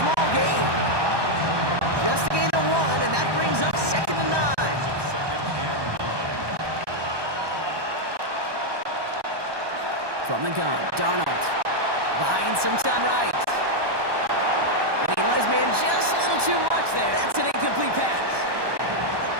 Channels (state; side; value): late; left; 1.2 ms